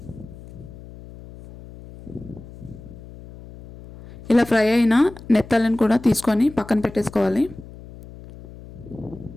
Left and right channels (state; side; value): noise; left; hum, 17 dB below the sound